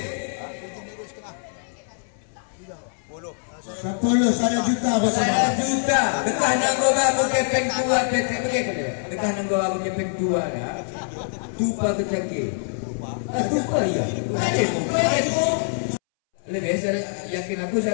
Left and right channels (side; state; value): right; silent; 63 dB below the other